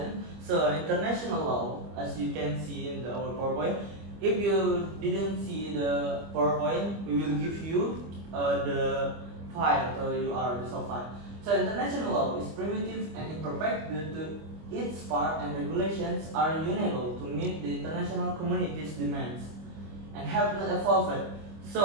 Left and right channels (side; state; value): left; late; 25 ms